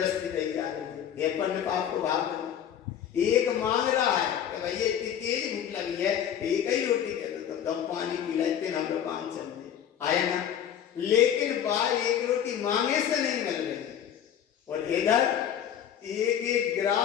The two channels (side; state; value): right; quieter; 9.5 dB